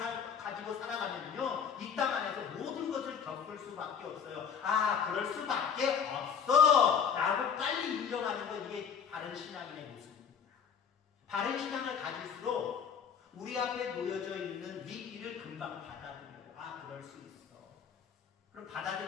가지고 살아가면요, 이 땅 안에서 모든 것을 겪을 수밖에 없어요. 아, 그럴 수밖에 없어 라고 빨리 인정하는 건 이게 바른 신앙인의 모습입니다. 바른 신앙을 가질수록 우리 앞에 놓여져 있는 위기를 금방 받아들여요. 아, 그럴 수 있어. 그럼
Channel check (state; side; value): quieter; right; 7.2 dB